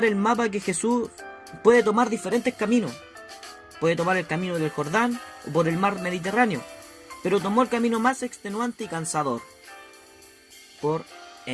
el mapa, que Jesús puede tomar diferentes caminos. Puede tomar el camino del Jordán o por el mar Mediterráneo, pero tomó el camino más extenuante y cansador, por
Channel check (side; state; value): both; identical; correlation 1.00